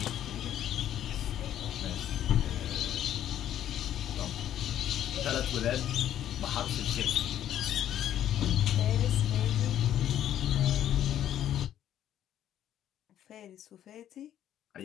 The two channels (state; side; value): quieter; right; 11.2 dB